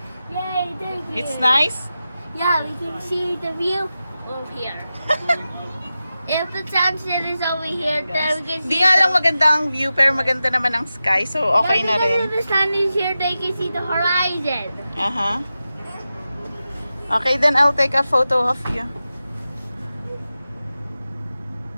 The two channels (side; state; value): both; inverted; correlation -0.93